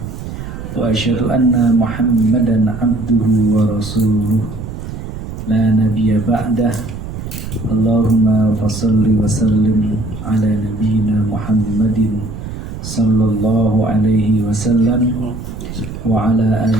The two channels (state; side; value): noise; right; rumble, 9 dB below the sound